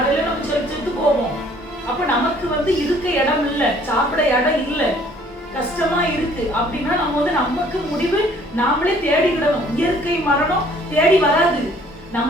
நம்ம செத்து போவோம். அப்ப நமக்கு இருக்க இடம் இல்ல, சாப்பிட இடம் இல்ல, கஷ்டமா இருக்கு அப்படின்னா நம்ம நமக்கு முடிவு நாமளே தேடிக்கிடணும். இயற்கை மரணம் தேடி வராது.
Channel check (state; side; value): normal; both; correlation 0.58